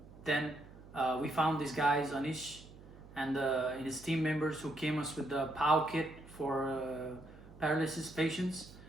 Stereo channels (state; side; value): noise; right; hum, 19 dB below the sound